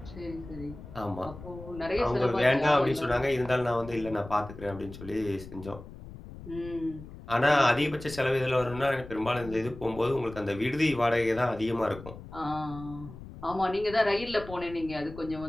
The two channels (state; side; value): noise; left; rumble, 14 dB below the sound